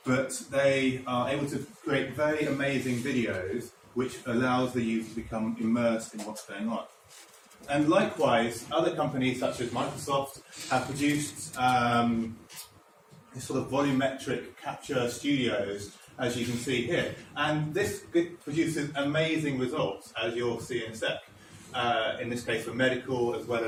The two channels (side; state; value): both; identical; correlation 1.00